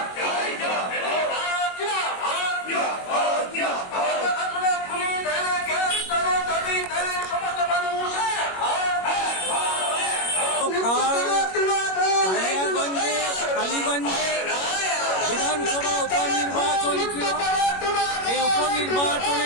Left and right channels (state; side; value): late; right; 21 ms